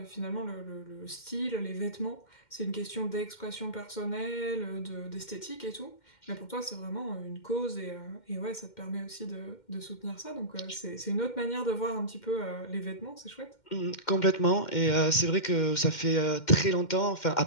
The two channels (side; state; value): right; late; 2.1 ms